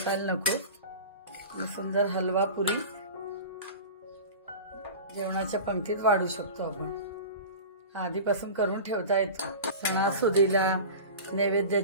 नको. सुंदर हलवा पुरी जेवणाच्या पंक्तीत वाढू शकतो आपण. आधीपासून करून ठेवता येतो. सणासुदीला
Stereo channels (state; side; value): inverted; both; correlation -0.34